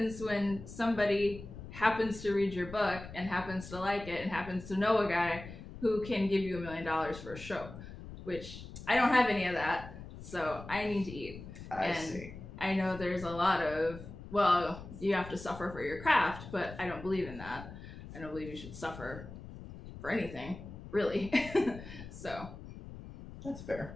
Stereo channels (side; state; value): left; noise; rumble, 13 dB below the sound